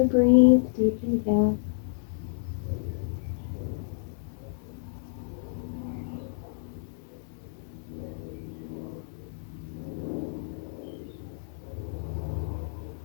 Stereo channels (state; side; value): silent; right; 58 dB below the other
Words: breathe deeply here.